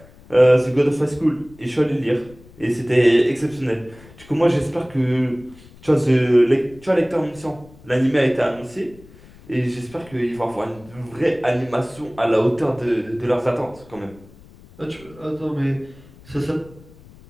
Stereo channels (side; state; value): left; noise; rumble, 23 dB below the sound